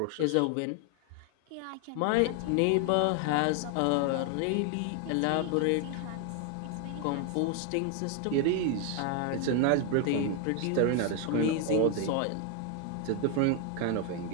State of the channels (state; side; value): different; both; correlation 0.01